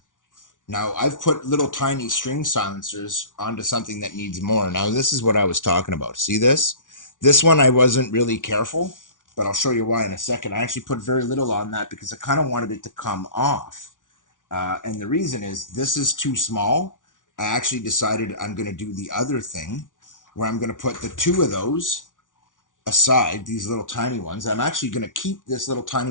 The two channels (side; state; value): right; late; 0.88 ms